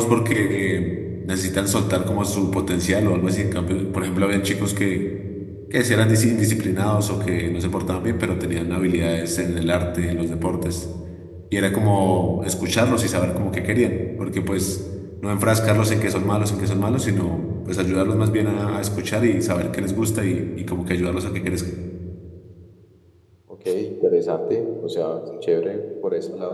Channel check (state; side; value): identical; both; correlation 1.00